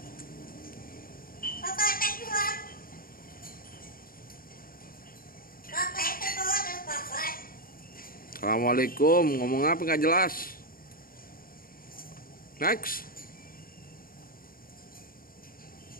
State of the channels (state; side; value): late; right; 0.42 ms